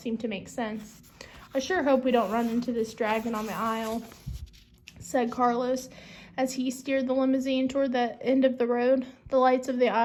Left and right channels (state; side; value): identical; both; correlation 1.00